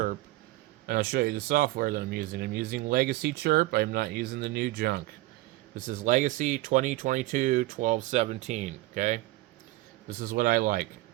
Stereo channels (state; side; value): quieter; left; 18.6 dB